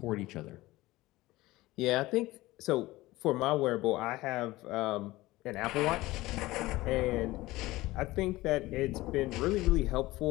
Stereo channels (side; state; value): right; quieter; 18.6 dB